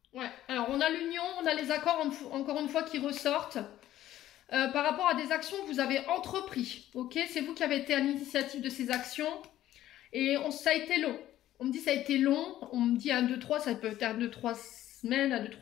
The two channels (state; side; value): quieter; right; 13.4 dB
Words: Ouais, alors on a l'union, on a les accords, encore une fois, qui ressortent. Par rapport à des actions que vous avez entrepris. Ok, c'est vous qui avez été à l'initiative de ces actions. Et ça a été long. On me dit ça a été long. On me dit 1, 2, 3, ça peut être 1, 2, 3 semaines, 1, 2,